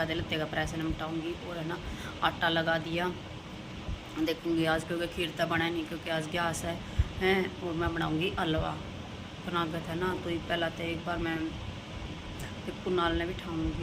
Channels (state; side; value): identical; both; correlation 1.00